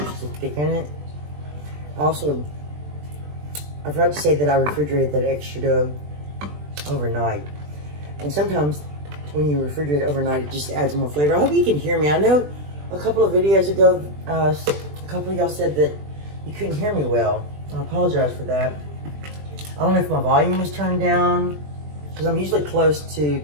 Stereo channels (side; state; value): left; late; 20 ms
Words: to thicken it. Also, I forgot to say that I refrigerated that extra dough overnight. And sometimes when you refrigerate it overnight, it just adds more flavor. I hope you can hear me. I know a couple of videos ago, a couple of y'all said that you couldn't hear me well. I apologize for that. I don't know if my volume was turned down, because I'm usually close to